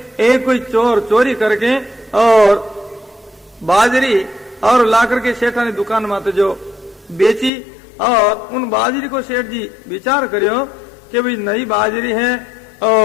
एक कोई चोर चोरी करके और बाजरी और ला करके सेठा ने दुकान में जो बेची, और उन बाजरी को सेठ जी विचार करियो कि भाई नई बाजरी है,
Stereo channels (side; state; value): right; drops out; at 7.5 s